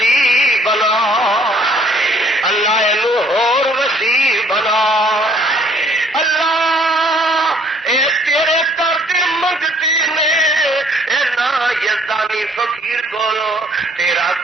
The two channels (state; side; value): normal; both; correlation 0.61